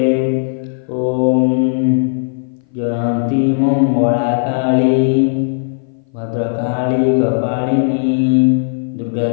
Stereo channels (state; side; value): silent; right; 59 dB below the other